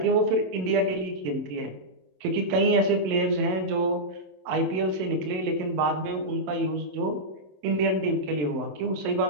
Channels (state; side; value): late; left; 27 ms